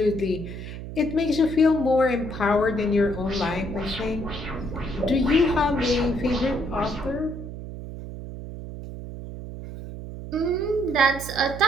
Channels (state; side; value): noise; right; hum, 10 dB below the sound